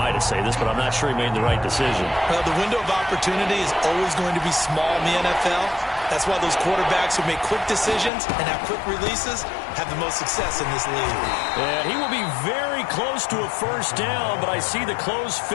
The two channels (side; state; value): right; drops out; at 8.1 s